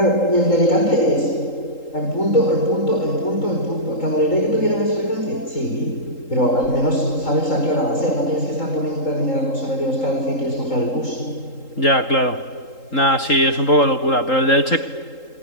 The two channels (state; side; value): late; right; 3.8 ms